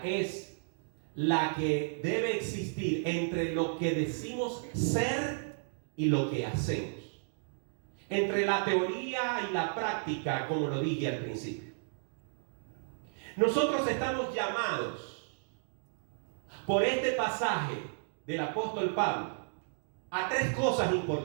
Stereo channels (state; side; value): silent; left; digital silence